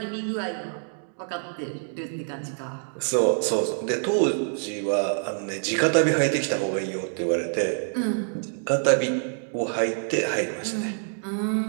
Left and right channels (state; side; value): silent; left; digital silence